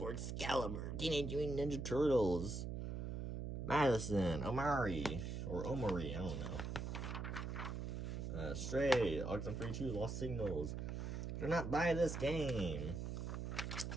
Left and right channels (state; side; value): noise; right; hum, 4 dB below the sound